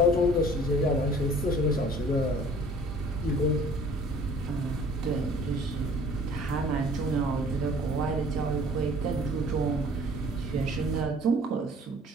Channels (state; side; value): normal; both; correlation 0.51